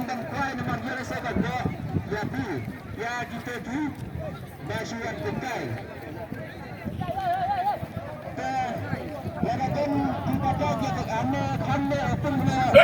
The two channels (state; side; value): identical; both; correlation 1.00